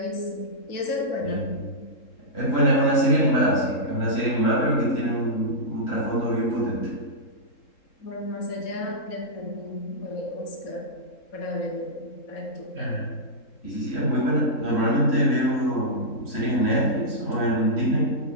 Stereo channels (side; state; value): right; late; 3.7 ms